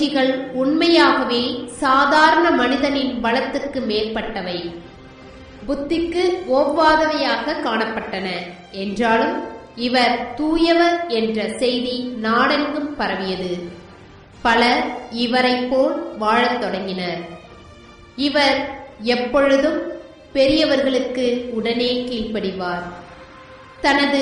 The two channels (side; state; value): both; identical; correlation 1.00